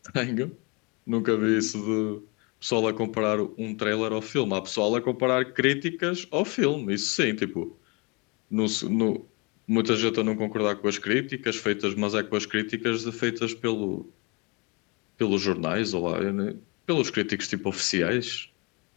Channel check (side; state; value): right; quieter; 29.8 dB